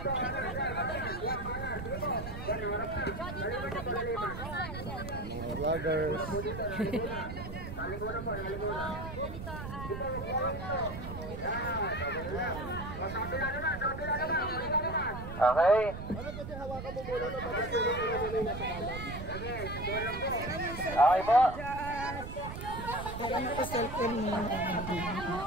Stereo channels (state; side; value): noise; right; rumble, 8 dB below the sound